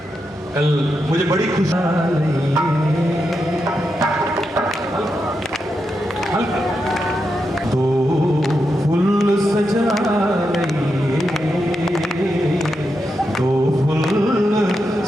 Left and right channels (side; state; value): both; normal; correlation 0.86